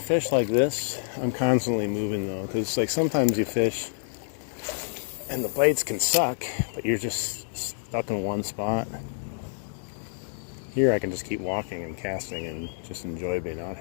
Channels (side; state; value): right; silent; 60 dB below the other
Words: like this, I'm constantly moving though, because like sometimes you fish and the bites can suck, but you're just stuck in one spot. Here I can just keep walking and casting and just enjoy being out